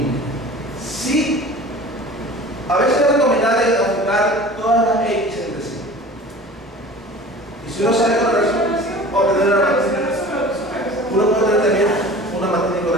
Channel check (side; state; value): both; normal; correlation 0.41